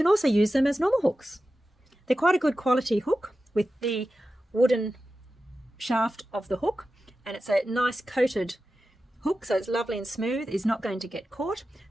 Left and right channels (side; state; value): both; normal; correlation 0.93